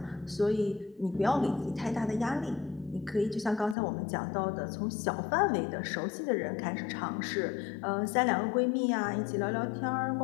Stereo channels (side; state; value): right; drops out; at 3.8 s